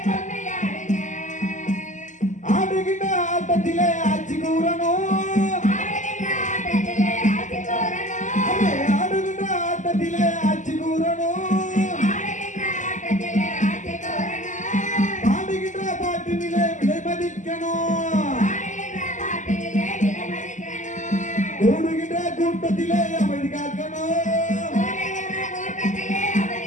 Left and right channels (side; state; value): right; late; 0.36 ms